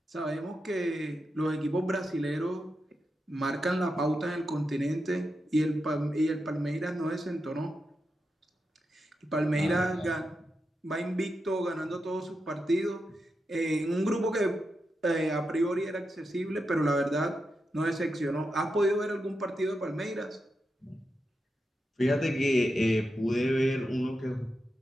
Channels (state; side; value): normal; both; correlation 0.87